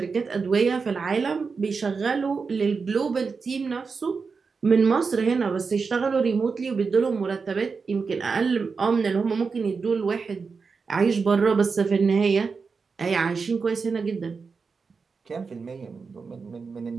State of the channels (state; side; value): quieter; left; 5.0 dB